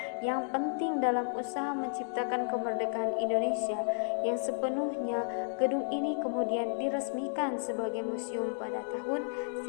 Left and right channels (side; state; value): right; silent; digital silence